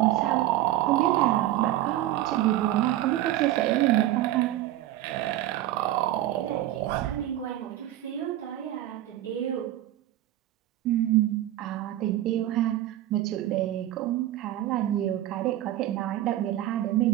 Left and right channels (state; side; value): quieter; left; 14.0 dB